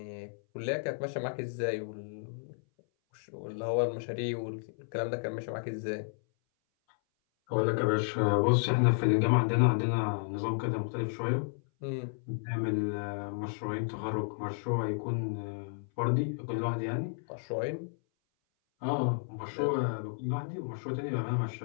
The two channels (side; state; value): right; silent; 56 dB below the other